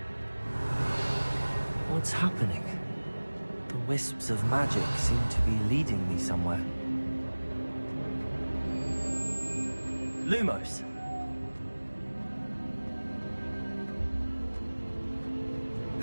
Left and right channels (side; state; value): both; inverted; correlation -1.00